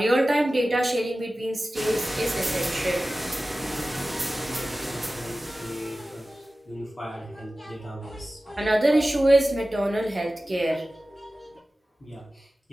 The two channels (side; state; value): both; normal; correlation 0.96